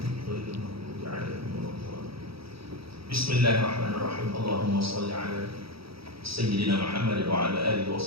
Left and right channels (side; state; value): left; late; 0.76 ms